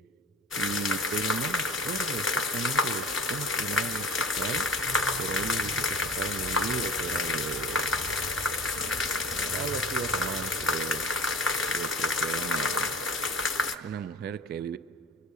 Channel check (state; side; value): normal; both; correlation 0.40